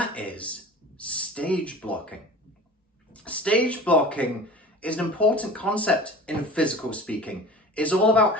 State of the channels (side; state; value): both; normal; correlation 0.40